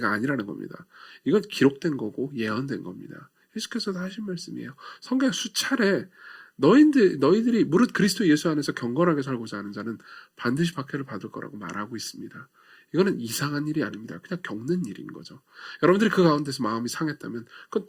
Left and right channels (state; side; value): identical; both; correlation 1.00